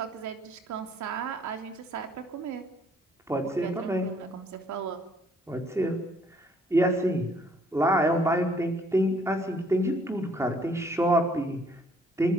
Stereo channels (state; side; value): normal; both; correlation 0.64